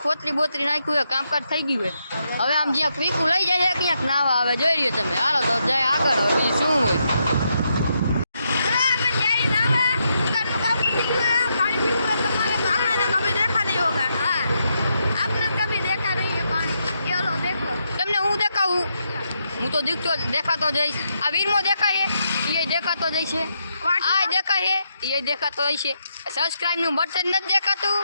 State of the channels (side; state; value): both; inverted; correlation -0.81